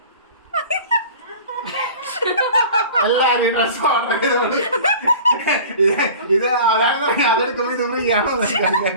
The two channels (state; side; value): inverted; both; correlation -0.41